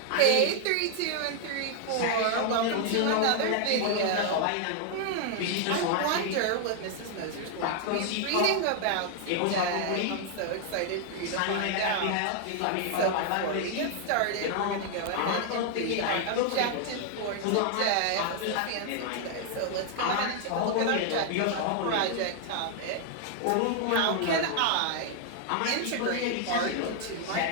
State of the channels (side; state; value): both; different; correlation 0.00